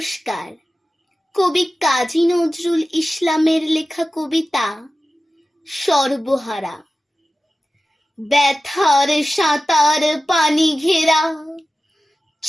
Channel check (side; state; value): both; normal; correlation 0.95